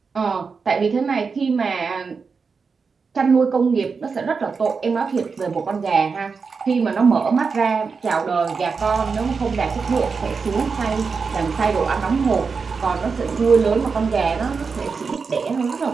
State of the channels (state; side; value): quieter; left; 5.1 dB